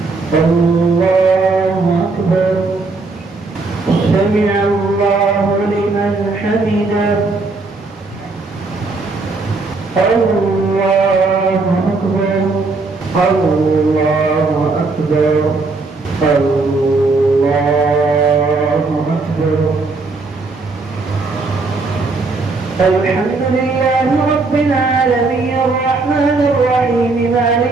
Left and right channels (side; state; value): left; quieter; 3.7 dB